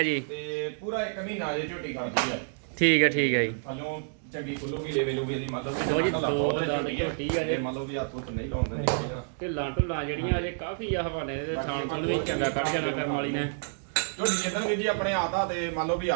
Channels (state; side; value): silent; left; digital silence